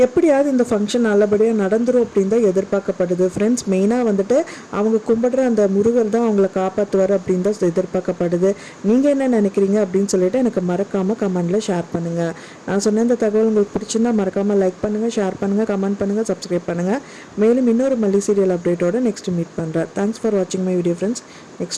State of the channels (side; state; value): both; identical; correlation 1.00